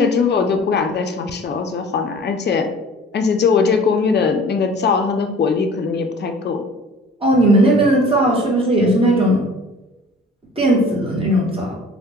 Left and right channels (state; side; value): normal; both; correlation 0.47